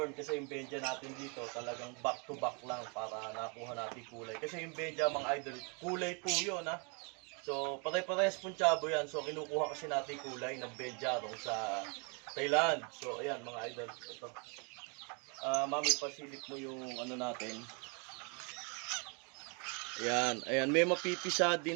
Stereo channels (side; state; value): left; quieter; 34.7 dB